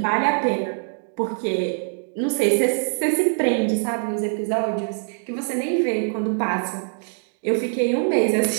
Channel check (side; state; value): left; silent; digital silence